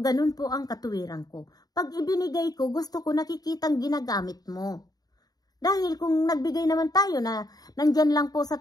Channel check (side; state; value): right; late; 0.19 ms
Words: po ang katuwiran ko. Pag ibinigay ko, gusto ko nakikitang ginagamit mo. Dahil kung nagbigay naman tayo na nandyan lang po